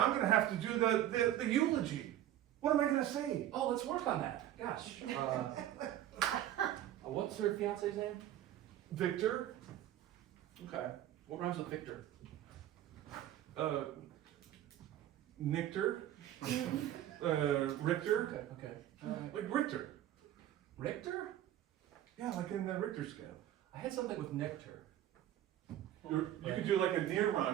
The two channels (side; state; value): left; quieter; 12.5 dB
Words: gonna have to do the eulogy. What am I gonna say? Oh, let's work on that. Gosh. What's her fiance's name? Victor? Okay. What rhymes with Victor? Nictor? Richter? Okay. Like Richter. Richter? Yeah, like in the Richter scale. I had something with nectar. You could do like a near